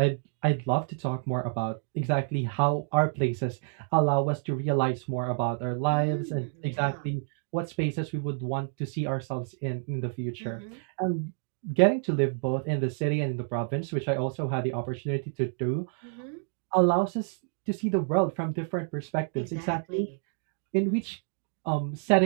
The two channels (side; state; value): left; silent; 56 dB below the other